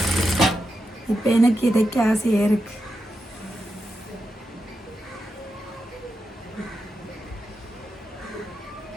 இப்போ எனக்கு இதைக்க ஆசையாக இருக்கு.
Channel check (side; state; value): both; normal; correlation 0.87